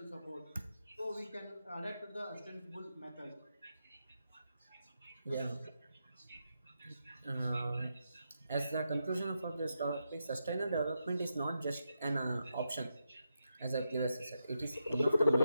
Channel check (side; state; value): both; inverted; correlation -0.85